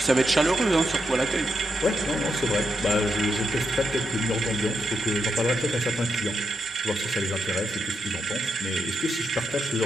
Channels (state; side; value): normal; both; correlation 0.83